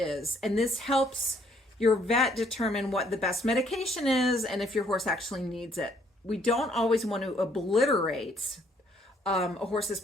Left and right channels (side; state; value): both; normal; correlation 0.66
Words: And this helps your vet determine what the best medication is and if your horse actually needs it. We don't always want to obliterate a horse's